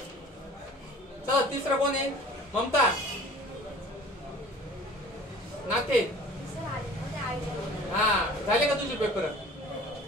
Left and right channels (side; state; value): both; normal; correlation 0.46